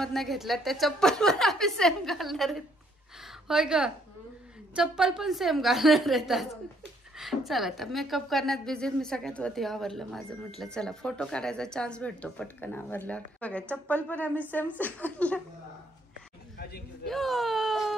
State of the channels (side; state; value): both; normal; correlation 0.68